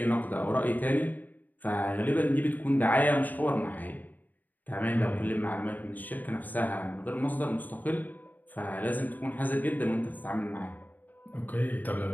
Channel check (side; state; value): right; late; 0.085 ms